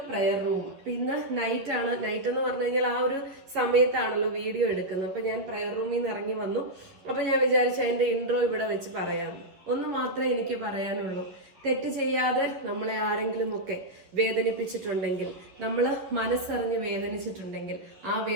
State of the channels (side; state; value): left; late; 11 ms